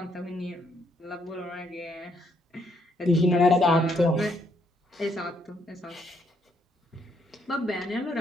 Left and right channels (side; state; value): both; normal; correlation 0.72